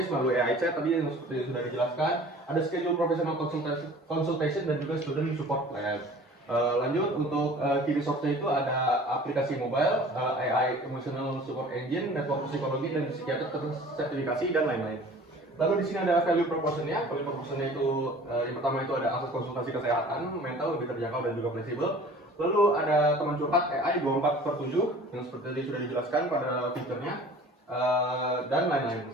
melalui AI chat tadi yang seperti sudah dijelaskan. Ada schedule professional consultation dan juga student support plan. Lanjut untuk key resource-nya itu ada aplikasi mobile, AI emotional support engine, network psikologi dan psikiater sertifikasi dan lain-lain. Lalu di sini ada value proposition-nya. Value proposition-nya itu yang pertama itu ada akses konsultasi kesehatan mental lebih terjangkau dan juga fleksibel. Lalu ada teman curhat AI 24/7 yang seperti tadi sudah dijelaskan pada fiturnya. Dan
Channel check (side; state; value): both; normal; correlation 0.46